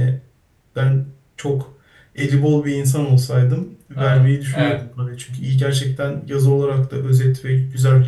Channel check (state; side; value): identical; both; correlation 1.00